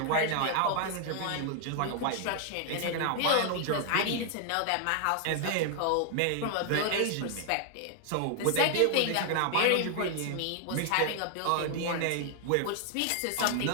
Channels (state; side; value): different; both; correlation 0.00